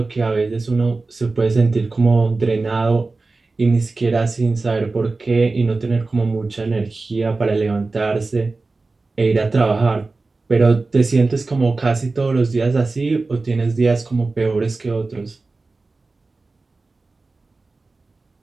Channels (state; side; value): quieter; left; 3.6 dB